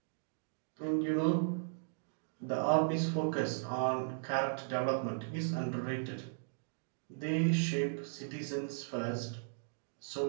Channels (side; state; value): left; silent; digital silence